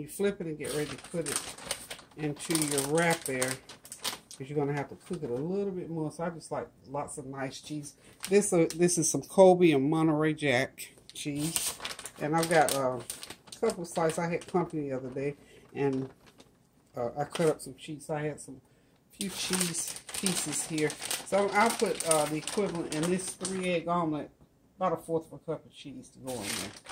flip it and get ready to put it into your wrap there, because you're going to have to cook it a little bit more. So I just like lots of nice cheese. This is some Colby and Monterey Jack cheese. And I've got a couple of slices. I had company the other day, and I cut up some cheese. I had few cheese pieces here. So I'll put the equivalent in this 3-egg omelet, about 1/4 of a cup of cheese to go in there.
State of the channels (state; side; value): identical; both; correlation 1.00